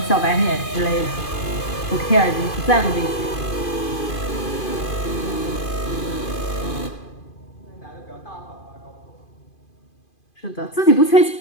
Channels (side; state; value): right; late; 2.5 ms